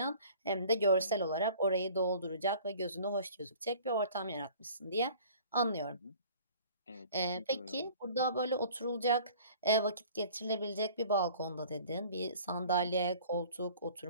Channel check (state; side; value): inverted; both; correlation -0.48